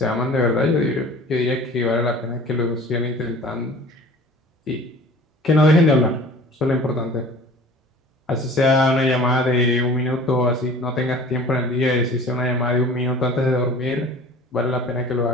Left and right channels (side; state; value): both; normal; correlation 0.44